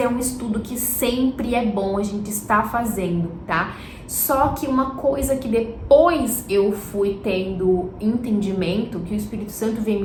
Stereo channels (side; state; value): both; identical; correlation 1.00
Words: é um estudo que sempre é bom a gente estar fazendo, tá? Só que uma coisa que depois eu fui tendo entendimento, que o Espírito Santo vem